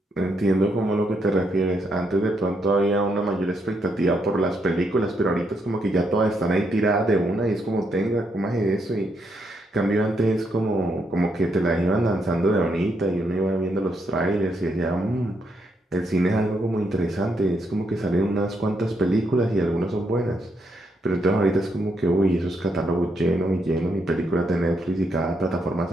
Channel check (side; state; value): both; normal; correlation 0.77